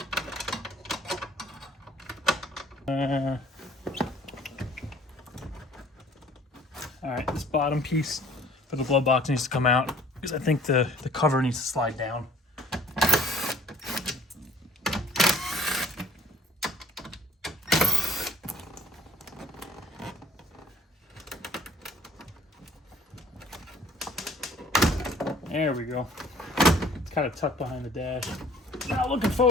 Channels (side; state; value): both; normal; correlation 0.55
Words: All right, this bottom piece for the glove box needs to come out because I think the cover needs to slide down. There we go. It's kind of tucked behind the dash. Now looking